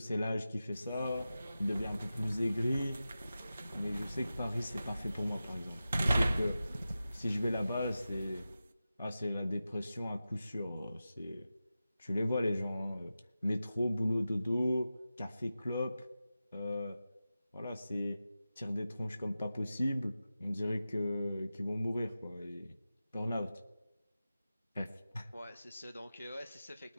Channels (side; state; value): both; inverted; correlation -0.93